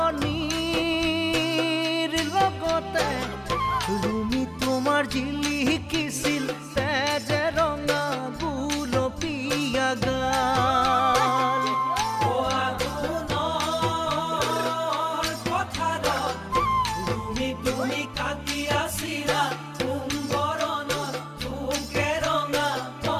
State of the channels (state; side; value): identical; both; correlation 1.00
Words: লগতে তুমি তোমাৰ জিলিকিছিল তেজে ৰঙা গুলপীয়া গাল। তুমি কাটিয়াছিলা সোণ বৰণৰ শুকে ৰঙা